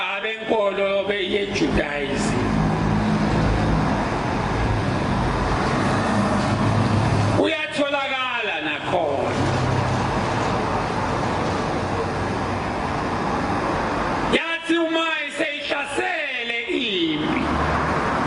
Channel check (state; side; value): identical; both; correlation 1.00